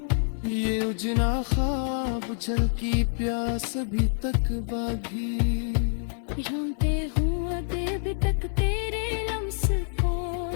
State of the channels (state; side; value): silent; right; 60 dB below the other